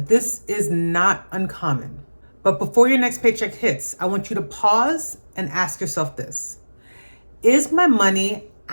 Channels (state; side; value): inverted; both; correlation -1.00